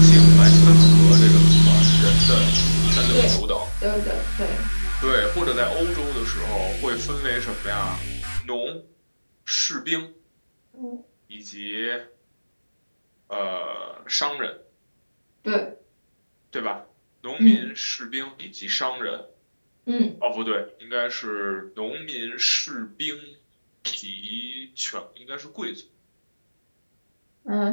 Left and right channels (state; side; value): inverted; both; correlation -1.00